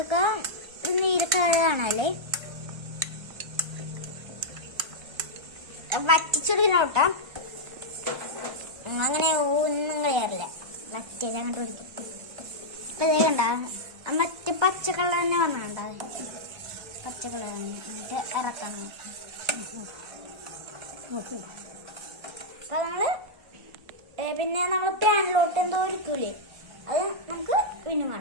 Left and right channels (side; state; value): left; late; 1.3 ms